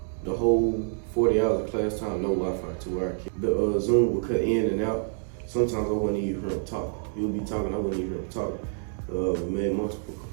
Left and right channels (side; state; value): left; silent; 60 dB below the other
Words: The whole 40 hours of class time, no Wi-Fi to where the Zoom would cut in and out. Sometimes I wouldn't even hear him talk. He would be talking, I wouldn't even hear him talk. We made multiple